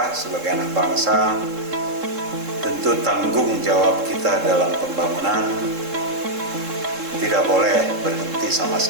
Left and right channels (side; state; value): left; late; 3.7 ms